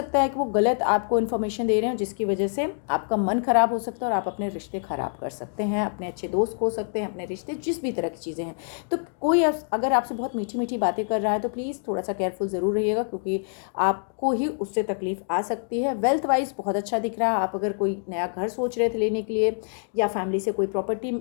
है कि वो गलत आपको इन्फॉर्मेशन दे रहे हैं, जिसकी वजह से आपका मन ख़राब हो सकता है और आप अपने रिश्ते ख़राब कर सकते हैं, अपने अच्छे दोस्त खो सकते हैं, अपने रिश्ते, जिस भी तरह की चीज़ें हैं। तो कोई अगर आपसे बहुत मीठी मीठी बातें कर रहा है तो प्लीज़ थोड़ा सा केयरफुल ज़रूर रहिएगा, क्योंकि आपको ही उससे तकलीफ़ आ सकती है। वेल्थ वाइज बहुत अच्छा दिख रहा है। आप अगर कोई नया घर सोच रहे थे लेने के लिए, या फैमिली से कोई प्रॉपर्टी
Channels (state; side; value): silent; right; digital silence